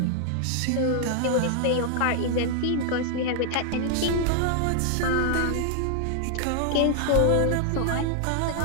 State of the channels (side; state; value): both; different; correlation 0.00